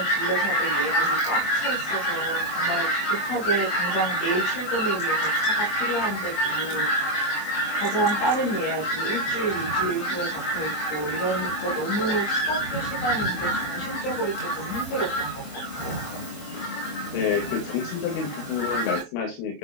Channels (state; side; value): late; right; 22 ms